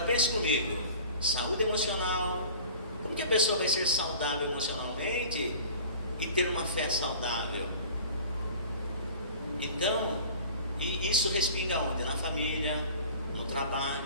pense comigo, saúde emocional, como que a pessoa vai ser saudável emocionalmente e ter uma fé saudável? Então, e isso respinga onde? Na família, no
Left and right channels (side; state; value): both; inverted; correlation -0.43